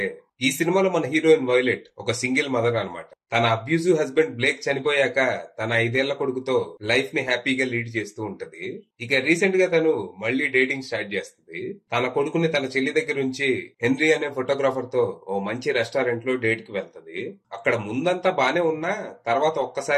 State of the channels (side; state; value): both; identical; correlation 1.00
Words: ఈ సినిమాలో మన హీరోయిన్ వైలెట్ ఒక సింగిల్ మదర్ అన్నమాట. తన అబ్యూజివ్ హస్బెండ్ బ్లేక్ చనిపోయాక తన 5 ఏళ్ల కొడుకుతో లైఫ్ ని హ్యాపీగా లీడ్ చేస్తూ ఉంటది. ఇక రీసెంట్ గా తను మళ్ళీ డేటింగ్ స్టార్ట్ చేస్తుంది. తన కొడుకుని తన చెల్లి దగ్గర నుంచి హెన్రీ అనే ఫోటోగ్రాఫర్ తో ఓ మంచి రెస్టారెంట్ లో డేట్ కి వెళ్తది. అక్కడ ముందంతా బానే ఉన్నా తర్వాత